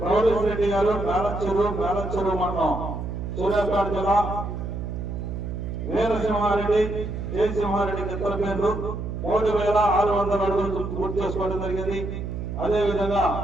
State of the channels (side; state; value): right; noise; hum, 5 dB below the sound